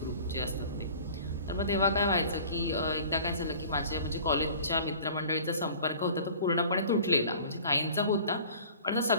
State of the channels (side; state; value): both; inverted; correlation -0.45